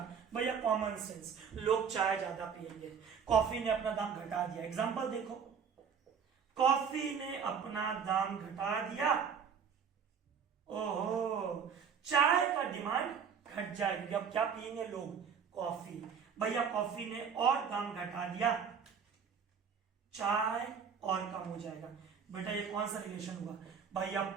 भैया, कॉमन सेंस, लोग चाय ज्यादा पिएंगे, कॉफी ने अपना दाम घटा दिया। एग्जांपल देखो, कॉफी ने अपना दाम घटा दिया, ओहो, चाय का डिमांड घट जाएगी। अब क्या पिएंगे लोग? कॉफी। भैया कॉफी ने और दाम घटा दिया, चाय और कम हो जाएगा। बेटा ये कौन सा रिलेशन हुआ? भैया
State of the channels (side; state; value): left; quieter; 6.7 dB